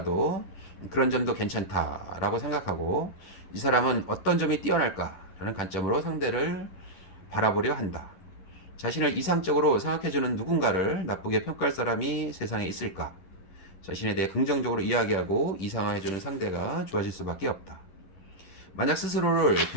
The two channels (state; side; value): late; right; 11 ms